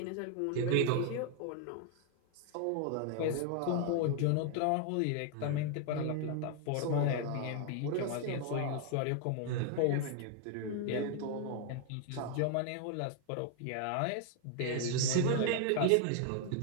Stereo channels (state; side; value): different; both; correlation 0.00